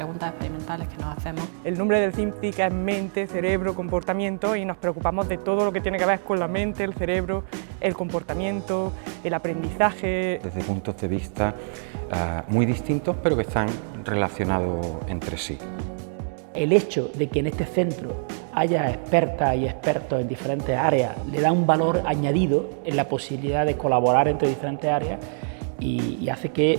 experimentales que nos hacemos. El nombre del CINCIC es mente, cerebro, comportamiento y nos preocupamos de todo lo que tiene que ver con la mente, el cerebro, el comportamiento, el aprendizaje. Desde puntos de vista muy distintos, pero que están relacionados entre sí. El hecho de que en este centro haya expertas y expertos en diferentes áreas le da un valor añadido en la posibilidad de colaborar entre diferentes áreas y hace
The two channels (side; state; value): left; silent; 62 dB below the other